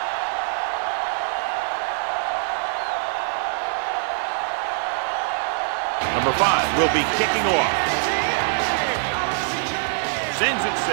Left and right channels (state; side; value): silent; left; 63 dB below the other